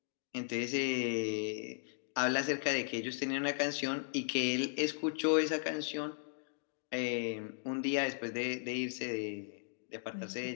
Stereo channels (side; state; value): right; silent; digital silence